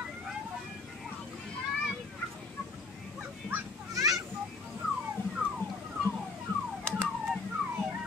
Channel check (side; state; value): right; quieter; 3.9 dB